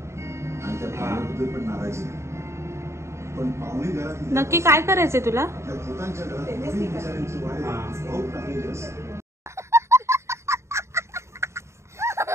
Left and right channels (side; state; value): left; late; 0.13 ms